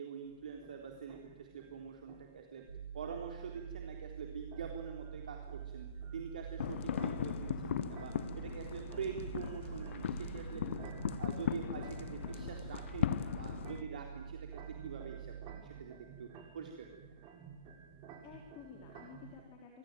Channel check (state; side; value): inverted; both; correlation -0.54